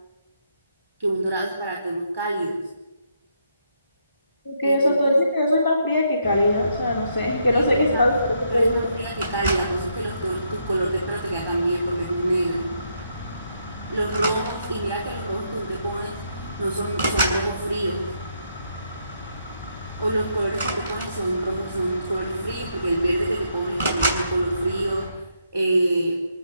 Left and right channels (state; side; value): inverted; both; correlation -0.76